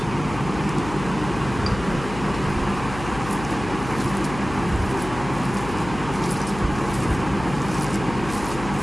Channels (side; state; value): left; noise; hum, 11 dB below the sound